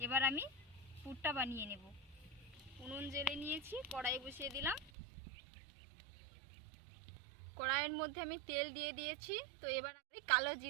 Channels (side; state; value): left; drops out; at 4.9 s